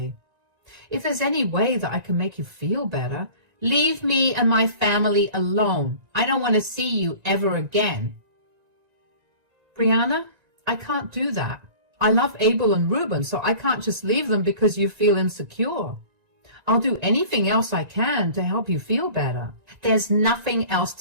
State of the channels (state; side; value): late; left; 1.9 ms